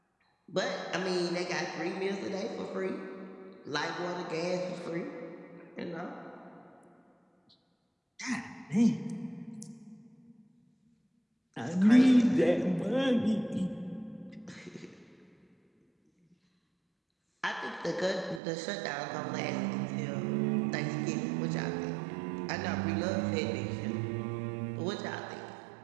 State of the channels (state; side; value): drops out; left; at 18.4 s